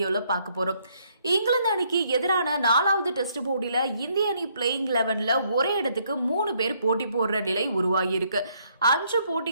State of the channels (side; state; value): both; inverted; correlation -0.70